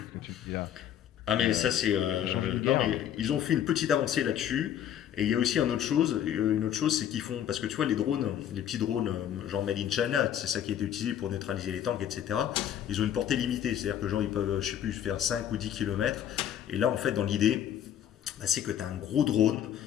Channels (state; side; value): quieter; right; 10.3 dB